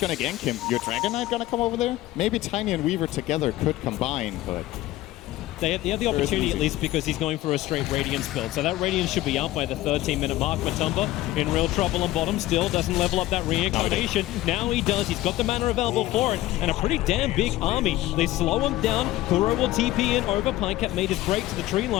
to gank him? Your Dragon Knight going to come over there? Maybe Tiny and Weaver together could combine, but They have the opportunity at least because he's going for a straight Radiance build. So that Radiance should be up by the 13-minute mark. Matumba in real trouble on bottom. Still doesn't level up that Reincarnation. Now he does. He's got the mana available for it. And a pretty damn big army. They slow him down. Kuro will TP in over. Pycat made his break to the tree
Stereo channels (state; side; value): quieter; right; 16.3 dB